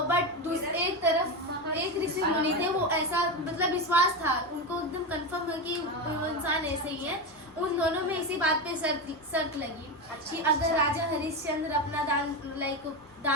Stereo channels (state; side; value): normal; both; correlation 0.16